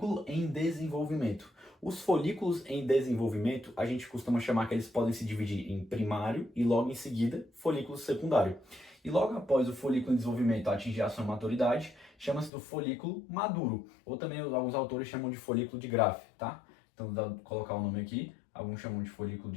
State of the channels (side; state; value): right; drops out; at 12.5 s